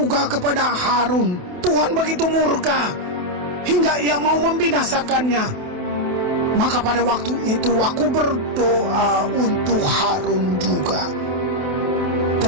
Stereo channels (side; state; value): left; late; 28 ms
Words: kepada Harun Tuhan begitu murka hingga ia mau membinasakannya. Maka pada waktu itu aku berdoa untuk Harun juga.